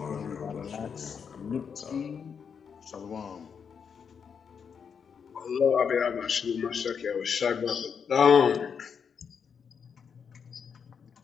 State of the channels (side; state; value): right; quieter; 6.7 dB